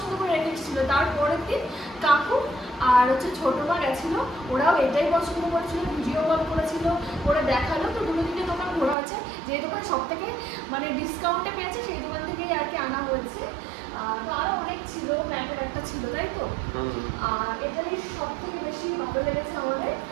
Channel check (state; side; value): drops out; left; at 9.0 s